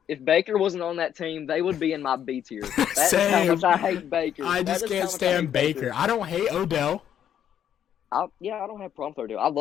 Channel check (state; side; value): quieter; right; 9.7 dB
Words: if Baker wasn't on that team, they would be in my B tier. That's how much I hate Baker. I just can't stand Baker. I don't hate Odell. I don't have a problem with Odell. I